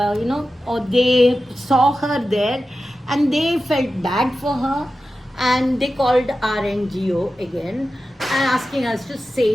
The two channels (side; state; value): both; normal; correlation 0.93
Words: or they saw her there, and they felt bad for her, and they called our NGO again, and asking us to